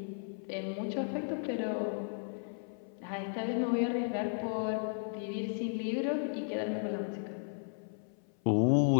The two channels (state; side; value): silent; right; 55 dB below the other